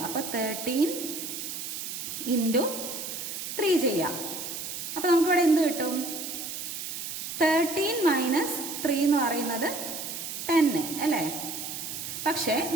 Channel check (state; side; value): noise; right; hiss, 6 dB below the sound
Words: അപ്പൊ 13 into 3 ചെയ്യാം. അപ്പൊ നമുക്കിവിടെ എന്ത് കിട്ടും? 13 - 3 എന്ന് പറയുന്നത് 10 അല്ലേ? പക്ഷേ